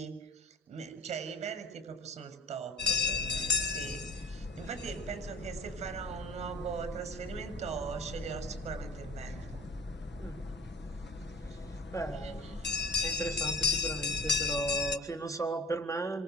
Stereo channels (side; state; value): both; normal; correlation 0.40